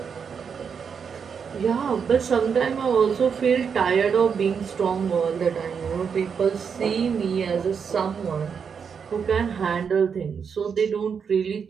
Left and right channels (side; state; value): left; quieter; 6.5 dB